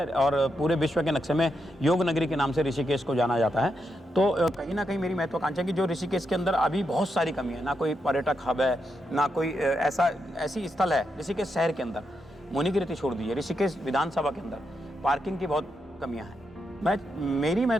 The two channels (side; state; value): both; normal; correlation 0.84